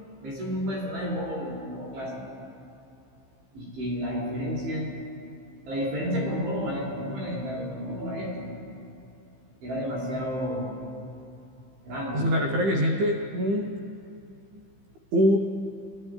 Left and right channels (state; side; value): late; left; 15 ms